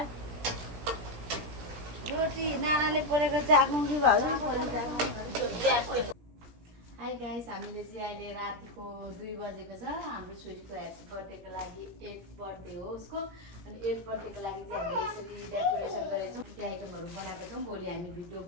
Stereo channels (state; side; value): late; left; 17 ms